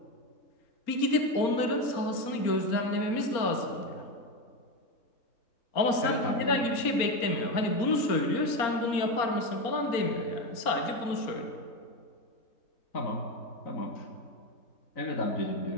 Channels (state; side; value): late; right; 4.3 ms